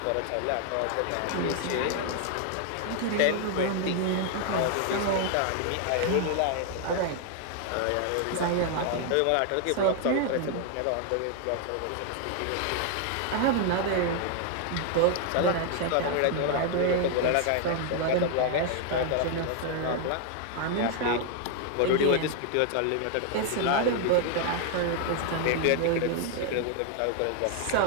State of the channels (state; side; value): different; both; correlation 0.00